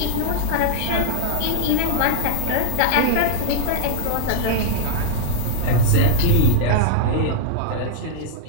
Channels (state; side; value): different; both; correlation 0.00